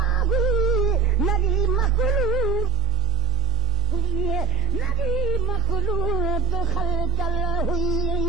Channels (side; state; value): left; quieter; 5.0 dB